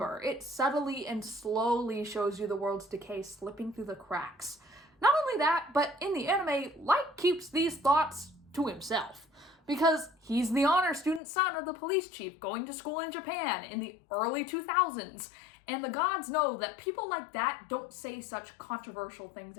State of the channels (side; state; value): right; drops out; at 11.2 s